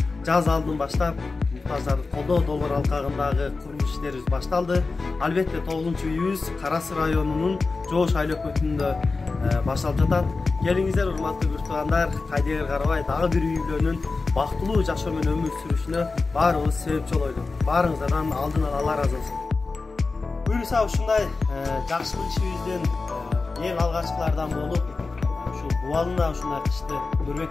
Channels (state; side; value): quieter; right; 3.9 dB